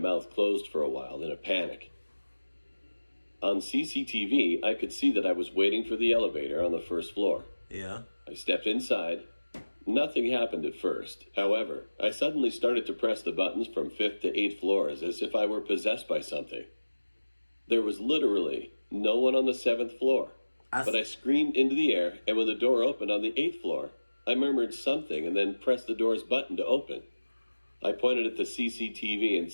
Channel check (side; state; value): both; inverted; correlation -1.00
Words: closed for a while in a panic. On CCTV, I could see that I was waiting for the elevator on the first floor. Yeah. I stepped inside. Nothing happened at first. However, I suddenly started to press the buttons from 5th to 8th floors as if I were possessed by something. There was literally no one on the 7th floor. But I screamed into the air, and when the door opened on the 8th floor, I murmured something and then pressed the door's button to open. I pointed at the CCTV and